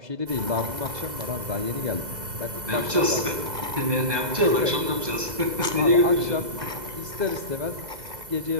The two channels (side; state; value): left; late; 2.0 ms